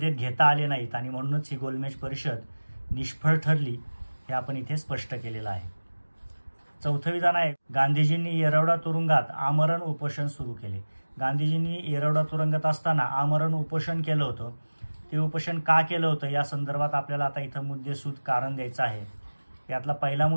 घेता आले नाहीत आणि म्हणूनच ही गोलमेज परिषद निष्फळ ठरली, हे आपण इथे स्पष्ट केलेलं आहे. चौथं विधान आहे, गांधीजींनी येरवडा तुरुंगात आमरण उपोषण सुरू केले. गांधीजींनी येरवडा तुरुंगात असताना आमरण उपोषण केलं होतं. ते उपोषण का केलं होतं या संदर्भात आपल्याला आता इथं मुद्देसूद कारण द्यायचं आहे. यातला पहिला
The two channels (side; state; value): both; inverted; correlation -1.00